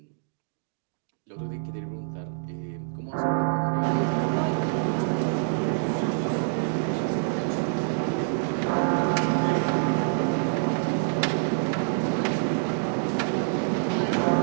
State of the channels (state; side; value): silent; left; digital silence